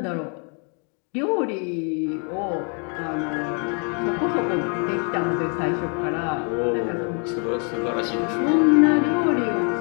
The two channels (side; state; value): right; quieter; 39.2 dB